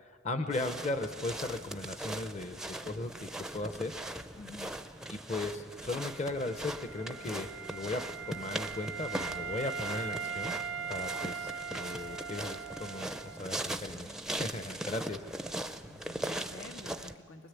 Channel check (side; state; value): both; normal; correlation 0.52